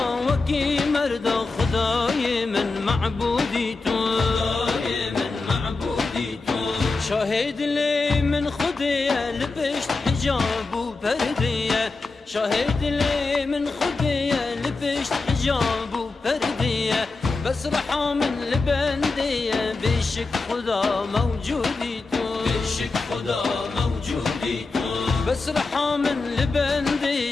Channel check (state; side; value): quieter; right; 3.8 dB